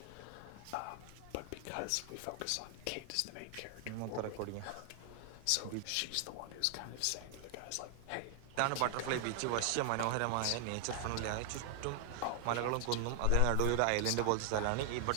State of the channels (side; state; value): both; different; correlation 0.00